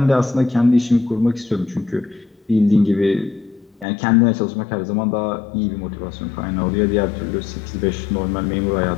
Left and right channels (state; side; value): drops out; right; at 3.9 s